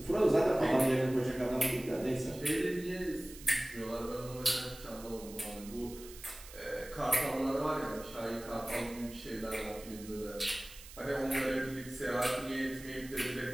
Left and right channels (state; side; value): noise; right; hiss, 16 dB below the sound